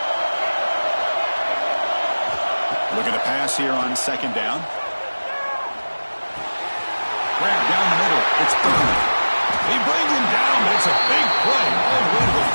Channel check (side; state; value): both; inverted; correlation -1.00